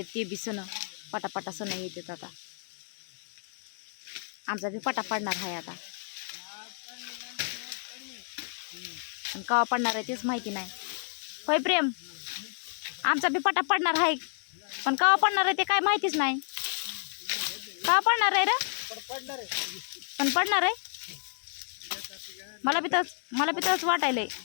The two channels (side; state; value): right; silent; digital silence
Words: ते बी सण, पटापटा सण येतात. आता आमचा बी पटा पडणार आहे आता, पण केव्हा पडणार आहे तेच माहिती नाही. होय प्रेम, आमचा बी पटा पडणार आहे पण केव्हा पडणार आहे ते काय माहितीच नाही. केव्हा पडणार आहे रे, पण पडणार आहे. मला बी तसंच वाटायलंय.